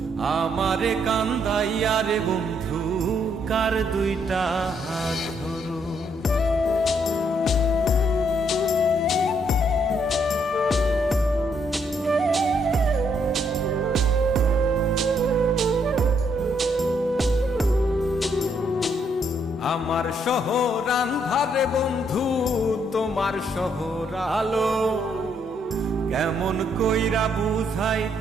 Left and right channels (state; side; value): normal; both; correlation 0.72